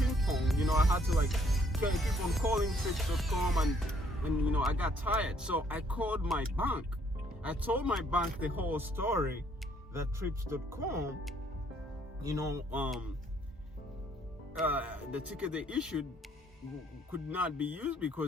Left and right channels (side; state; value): both; normal; correlation 0.66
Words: pong, I had to keep on calling Trips.com, and I got tired. So I called my bank. I told my bank the whole story, that Trips.com, the ticket they issued could not be used